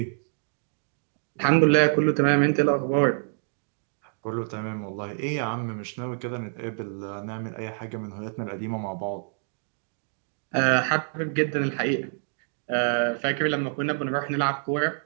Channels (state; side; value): silent; left; digital silence